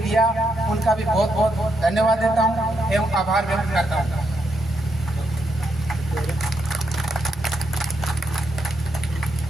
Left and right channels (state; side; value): normal; both; correlation 0.80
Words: दिया, उनका भी बहुत बहुत धन्यवाद देता हूँ एवं आभार व्यक्त करता हूँ।